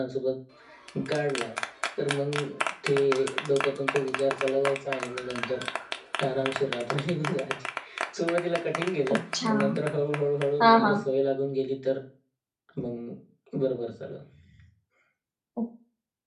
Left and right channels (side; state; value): both; identical; correlation 1.00